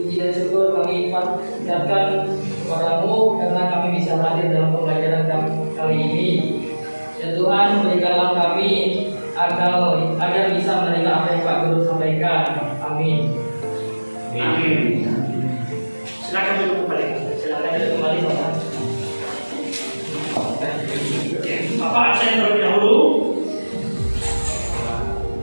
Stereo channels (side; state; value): both; inverted; correlation -1.00